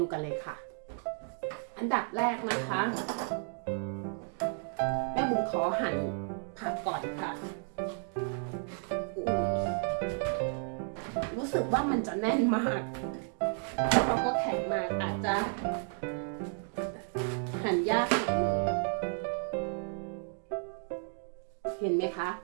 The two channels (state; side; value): silent; left; 56 dB below the other